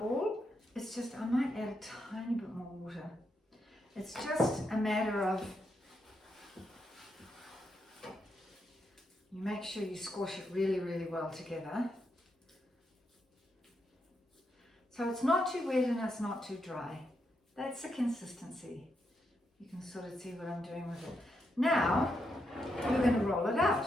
It's just, I might add a tiny bit more water. It's just a matter of, you make sure you squash it really, really well together. So it's not too wet and it's not too dry. That's the consistency. You can sort of see what I'm doing with it. Now, we're going to roll it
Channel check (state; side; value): normal; both; correlation 0.82